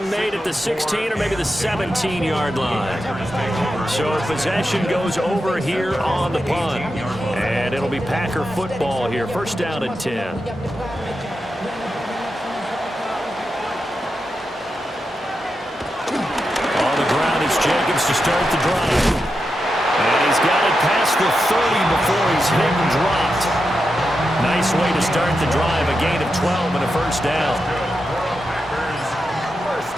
made at the 16 or maybe the 17-yard line. So possession goes over here on the punt. And it'll be Packer football here. First down and 10. On the ground is Jenkins to start the drive. And he's got it past the 30 before he's hit and dropped. Nice way to start the drive. A gain of 12 and a first down.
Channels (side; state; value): both; normal; correlation 0.88